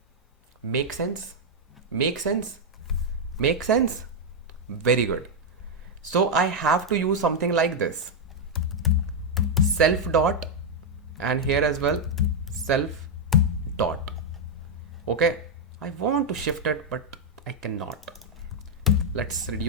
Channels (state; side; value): normal; both; correlation -0.02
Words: Make sense? Make sense? Make sense? Very good. So I have to use something like this, self dot, and here as well self dot. Okay, I want to shift it but I cannot. Let's